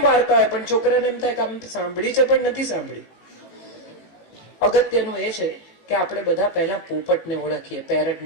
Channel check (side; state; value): right; late; 18 ms